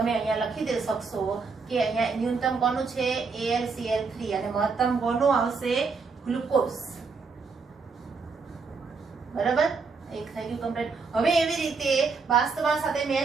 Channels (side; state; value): left; quieter; 4.8 dB